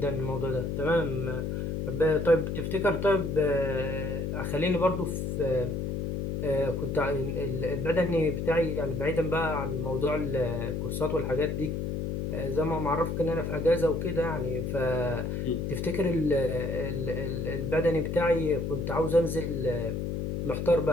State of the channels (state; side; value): noise; left; hum, 2 dB below the sound